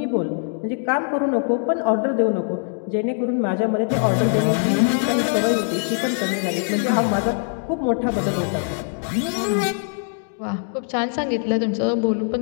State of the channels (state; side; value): silent; right; 61 dB below the other